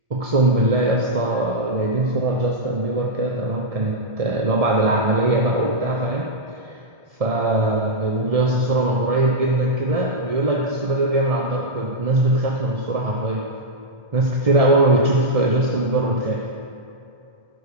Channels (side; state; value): left; late; 1.4 ms